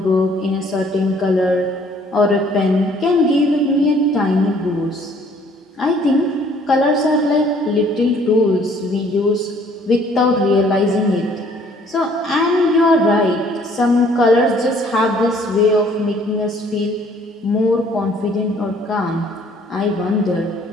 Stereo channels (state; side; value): normal; both; correlation 0.59